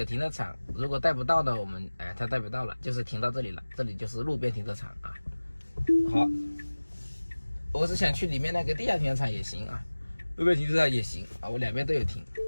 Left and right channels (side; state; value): both; inverted; correlation -1.00